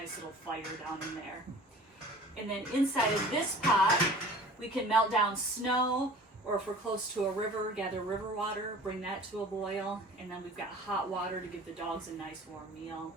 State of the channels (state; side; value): normal; both; correlation 0.44